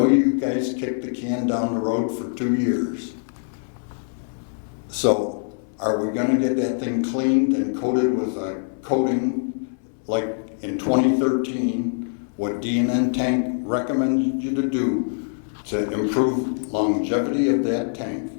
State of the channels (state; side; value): silent; right; digital silence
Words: you guys kicked the can down the road for 2 years. So are we gonna get that thing cleaned and coated with a coating like in 2013, what D&N Tank recommended you to do to improve longevity of that tank?